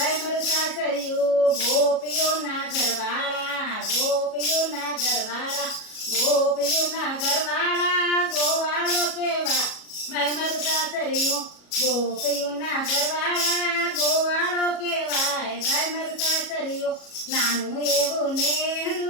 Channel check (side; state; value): right; late; 37 ms